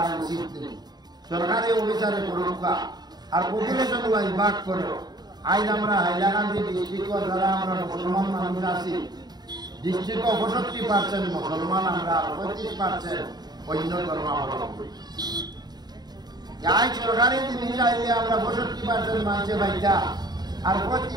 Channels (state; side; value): late; left; 0.20 ms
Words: উচিত নেই। সরকারি অফিসারে করুকা আর পপুলেশন ওয়াইজ ভাগ করো। আজ আমরা হাইলাকান্দি ডিস্ট্রিক্ট যারা আমরা মুসলমান মানুষ আছি, ডিস্ট্রিক্ট 65% মুসলমান, আমরা 35% অন্য ধর্মাবলম্বী। আজ সরকারি জিনিস আইলে আমরা 65% মানুষে বাইটা আর